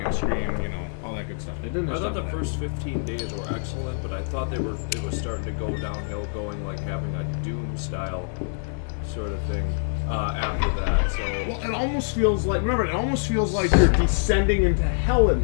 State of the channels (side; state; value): right; silent; digital silence